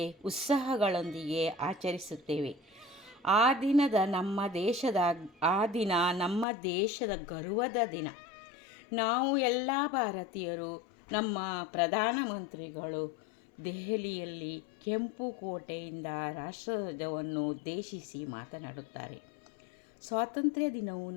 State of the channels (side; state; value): right; drops out; at 6.5 s